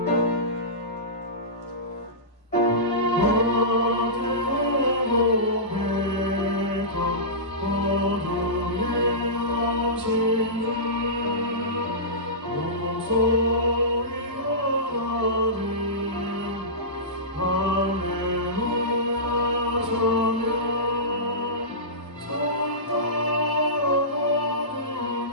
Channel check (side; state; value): both; normal; correlation -0.19